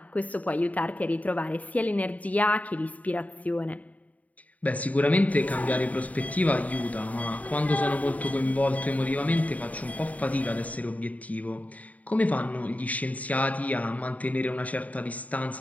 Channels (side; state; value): right; late; 0.071 ms